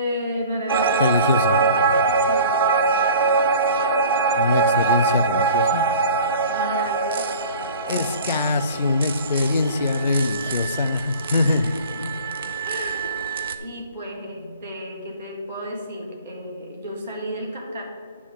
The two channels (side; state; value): both; inverted; correlation -0.43